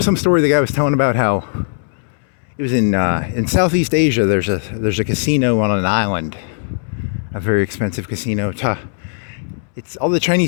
some story the guy was telling about how it was in Southeast Asia. There's a casino on an island, a very expensive casino. It's all the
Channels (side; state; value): right; silent; 67 dB below the other